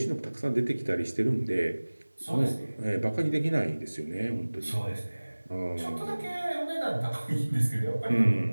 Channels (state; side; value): inverted; both; correlation -1.00